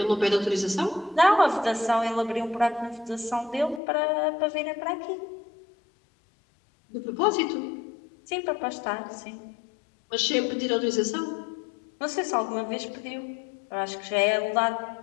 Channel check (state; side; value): drops out; right; at 3.8 s